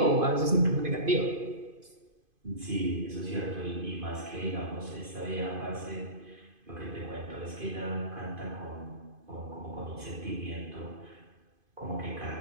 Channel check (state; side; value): late; left; 2.5 ms